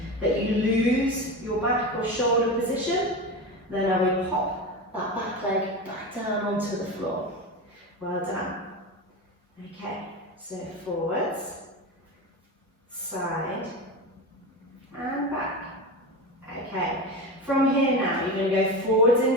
that you lose your back or shoulder position, then I will pop that back leg back down onto the floor. Well done. Okay, so forwards, side, and back. Okay, from here now, you're going to go forwards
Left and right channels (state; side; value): normal; both; correlation 0.23